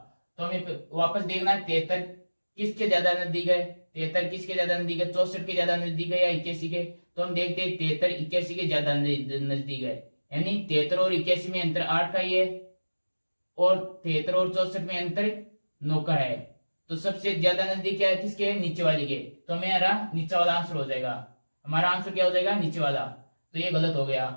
तो हमें वापस देखना है 73 किसके ज्यादा नजदीक है। 73 किसके ज्यादा नजदीक है, 64 के ज्यादा नजदीक है या 81 के। तो हम देखते हैं 73 81 के ज्यादा नजदीक है, यानी 73 और 81 में अंतर 8 का ही है और 73 और 64 में अंतर 9 का है। तो सबसे ज्यादा नजदीक क्या है, किसके है, नीचे वाले के। तो मेरा नीचे वाला आंसर हो जाएगा। हमारा आंसर क्या हो जाएगा, नीचे वाला। तो ये गलत हो गया।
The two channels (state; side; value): inverted; both; correlation -1.00